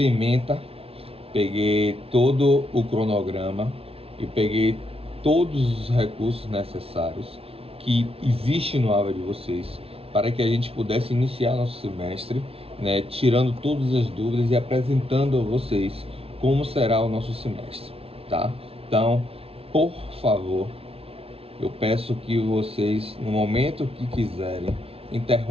a ementa, peguei todo o cronograma e peguei todos os recursos necessários que existem no AVA de vocês, para que a gente pudesse iniciar nosso semestre, né, tirando todas as dúvidas e apresentando a vocês como será o nosso semestre, tá? Então, por favor, eu peço que vocês, no momento que quiserem,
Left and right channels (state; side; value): late; left; 0.28 ms